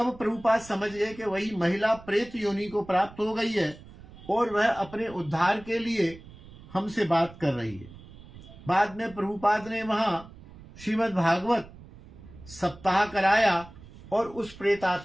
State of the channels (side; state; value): right; noise; rumble, 19 dB below the sound